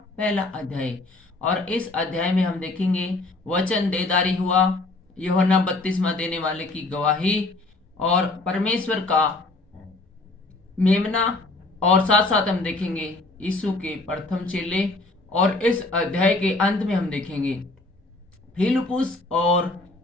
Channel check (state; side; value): quieter; right; 3.1 dB